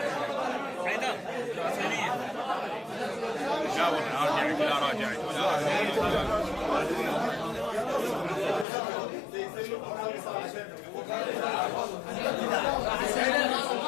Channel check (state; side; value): drops out; right; at 8.7 s